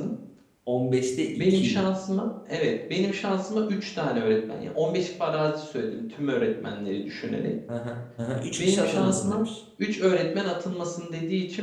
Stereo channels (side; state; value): both; identical; correlation 1.00